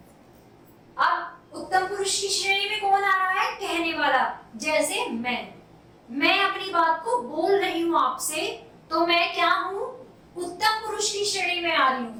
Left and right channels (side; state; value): both; identical; correlation 1.00